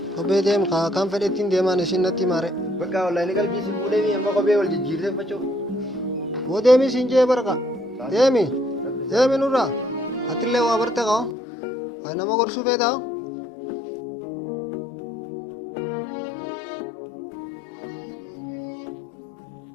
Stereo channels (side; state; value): right; drops out; at 11.4 s